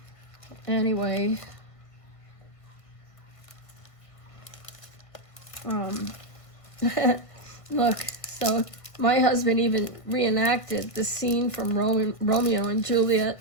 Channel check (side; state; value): right; late; 1.5 ms